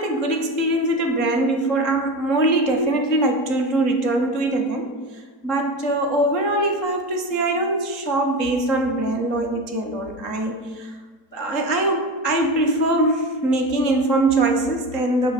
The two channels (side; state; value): right; late; 3.8 ms